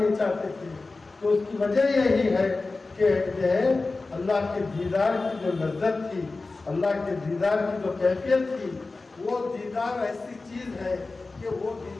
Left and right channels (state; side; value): quieter; right; 3.6 dB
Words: چاہتے تھے۔ تو اس کی وجہ یہی ہے کہ اللہ کے دیدار کی جو لذت تھی، اللہ کے دیدار کی جو کیفیت تھی، وہ دیدار ایسی چیز ہے کہ وہ